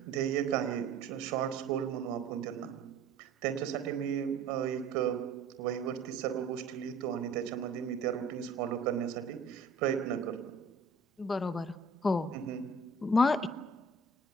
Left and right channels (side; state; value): left; quieter; 3.4 dB